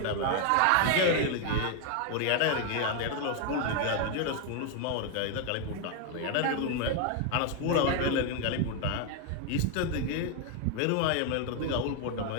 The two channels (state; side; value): different; both; correlation 0.01